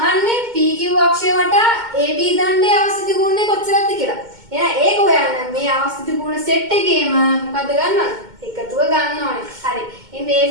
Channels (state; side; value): late; left; 2.2 ms